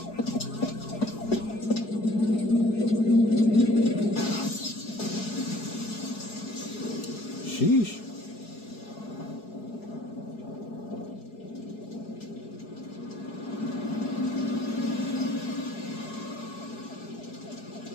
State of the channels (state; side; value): late; right; 4.7 ms